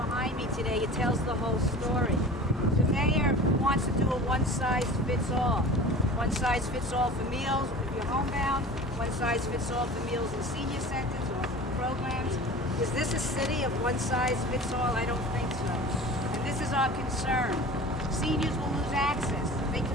me today, it tells the whole story. The mayor wants to do a one-size-fits-all. One-size-fits-all for meals if you're homebound, one-size-fits-all for meals in senior centers or programs. Is this a city of one-size-fits-all? I don't think so. And this is our concern. Seniors will lose access. They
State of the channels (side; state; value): both; normal; correlation 0.39